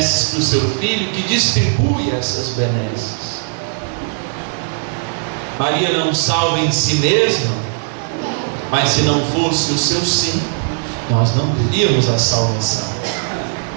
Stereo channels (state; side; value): silent; left; 56 dB below the other